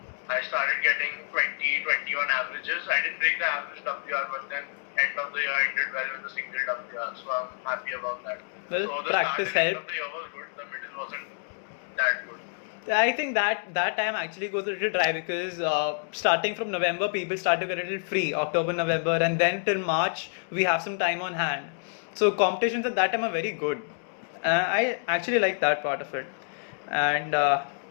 I started getting 20, 21 averages. I didn't break the average WR, but then end of the year I did well with the single WR. So I'm happy about that. Well, So the practice start and end of helped. the year was good. The middle wasn't that good. I think that time actually goes a little dry because starting from November, people start to get a little free, October, November, and then till March, we have some time on hand. So competitions at that time are very good. I actually like that part of it. And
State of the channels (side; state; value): right; silent; digital silence